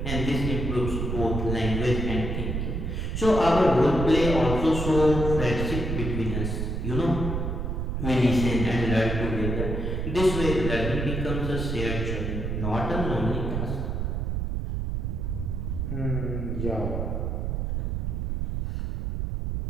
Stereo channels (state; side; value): noise; right; rumble, 2 dB below the sound